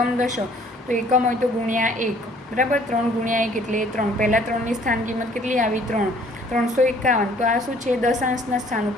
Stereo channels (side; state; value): both; normal; correlation 0.57